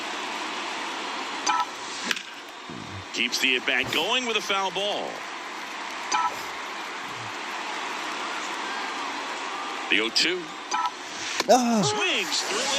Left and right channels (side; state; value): both; identical; correlation 1.00